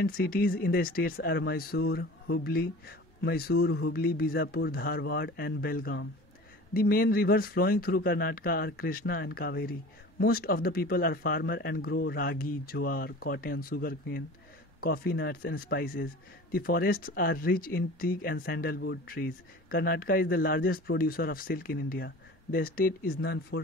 cities in the states are Mysore, Hubli, Bijapur, Dharwad and Belgaum. The main rivers flowing through Karnataka are Krishna and Kaveri. Most of the people are farmers and grow ragi, jowar, cotton, sugarcane, coffee nuts and spices. The forests are rich in teak and sandalwood trees. Karnataka is the largest producer of silk in India. The state is known for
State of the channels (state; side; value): normal; both; correlation 0.40